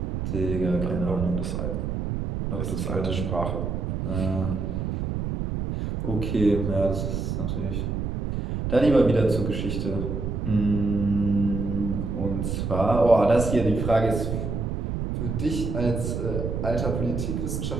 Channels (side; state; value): right; noise; rumble, 2 dB below the sound